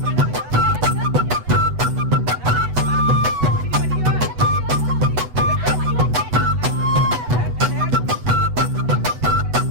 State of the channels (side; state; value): left; late; 8.1 ms